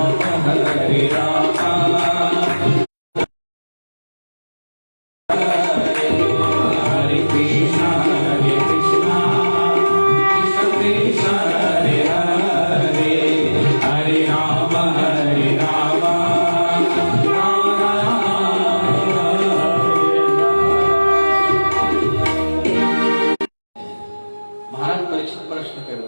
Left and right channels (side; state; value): both; inverted; correlation -1.00